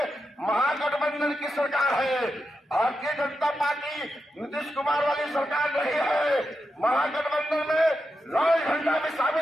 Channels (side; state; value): both; normal; correlation 0.88